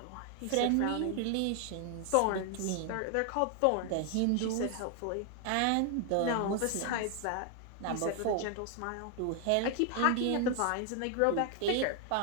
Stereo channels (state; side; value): different; both; correlation 0.00